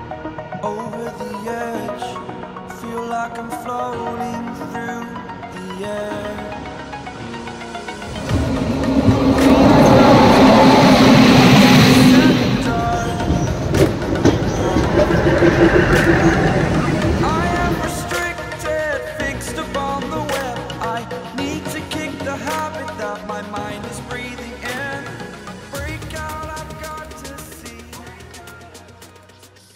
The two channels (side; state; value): both; identical; correlation 1.00